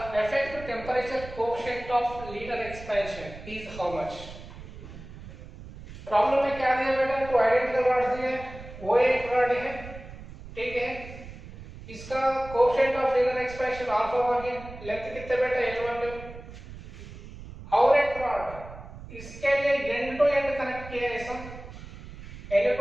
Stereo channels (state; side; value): noise; right; rumble, 14 dB below the sound